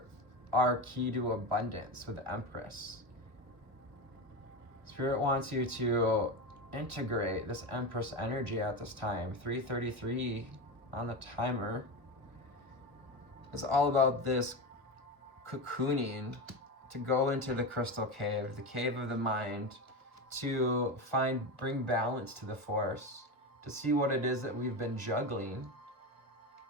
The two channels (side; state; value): left; late; 1.2 ms